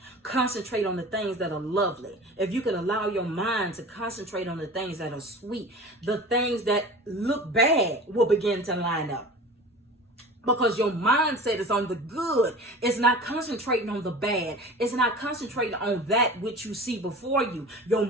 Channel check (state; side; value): normal; both; correlation 0.38